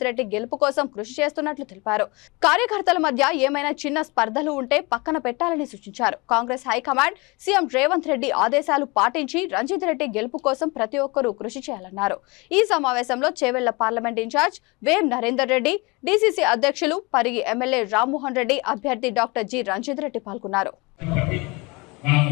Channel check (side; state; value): right; quieter; 26.3 dB